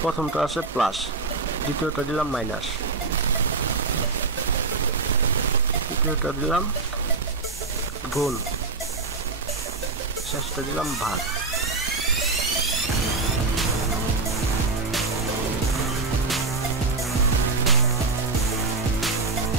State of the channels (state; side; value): quieter; left; 3.9 dB